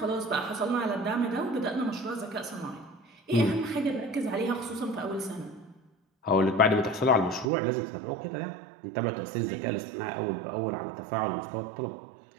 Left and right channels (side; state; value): left; drops out; at 7.5 s